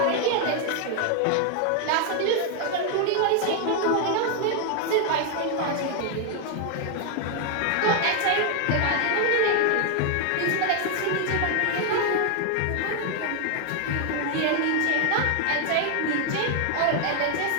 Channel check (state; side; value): different; both; correlation 0.00